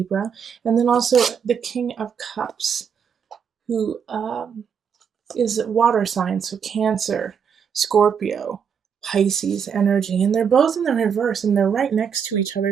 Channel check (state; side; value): quieter; left; 7.1 dB